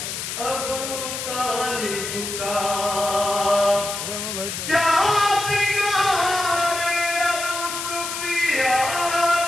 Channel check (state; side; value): noise; left; hiss, 5 dB below the sound